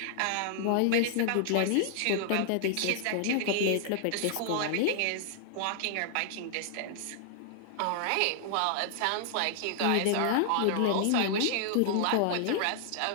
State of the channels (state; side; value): different; both; correlation -0.01